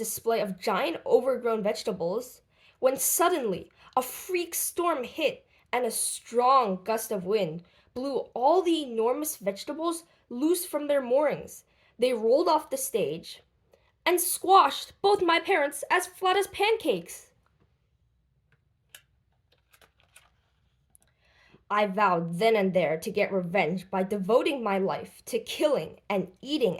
of giant overgrown vegetables when suddenly a freak storm hit and a strong gust of wind blew all the enormous vegetables loose from their moorings. They rolled off the stage and squashed both my parents as flat as pancakes. I vowed then and there to get revenge by devoting my life to killing and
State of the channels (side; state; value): both; identical; correlation 1.00